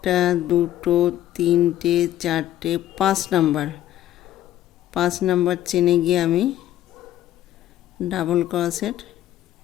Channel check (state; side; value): quieter; right; 13.1 dB